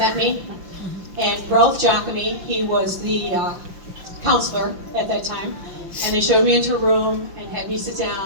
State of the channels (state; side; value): late; left; 5.8 ms